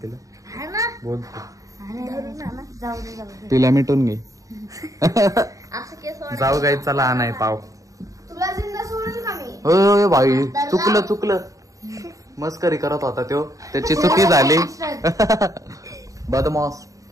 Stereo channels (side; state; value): left; late; 0.16 ms